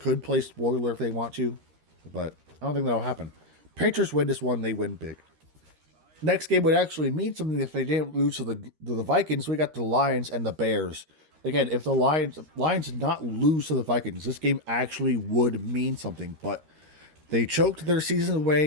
play spoiler if they want to, but I don't think that'll happen. Patriots win this one. They win big. Next game would actually mean something if they didn't lose to the Vikings. We got the Lions and the Bears. Again, if the Lions did not lose to the Vikings, this game actually would mean something. But they choked their season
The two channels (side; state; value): left; late; 13 ms